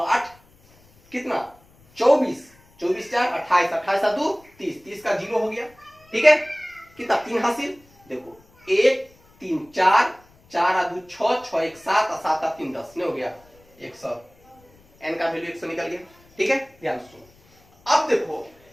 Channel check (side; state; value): left; noise; rumble, 30 dB below the sound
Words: 8 कितना, 24 24 4 28 28 2 30 30 का 0 हो गया, ठीक है। कितना 3 हासिल, देखो 1 3 4 4 2 6 6 1 7 7 3 10 नहीं हो गया 100, n का वैल्यू 100 निकल गया, ठीक है। ध्यान सुनो, अब देखो